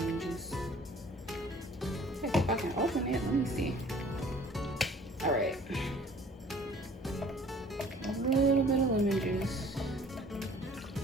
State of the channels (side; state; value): both; normal; correlation 0.52